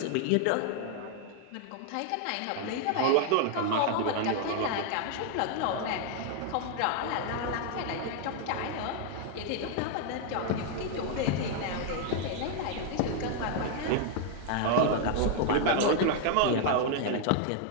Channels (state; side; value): different; both; correlation 0.00